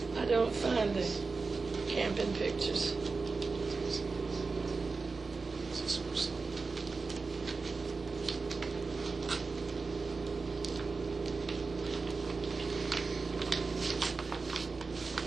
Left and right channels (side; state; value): left; quieter; 4.2 dB